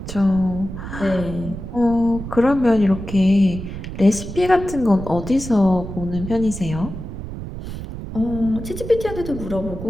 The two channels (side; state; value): right; noise; rumble, 9 dB below the sound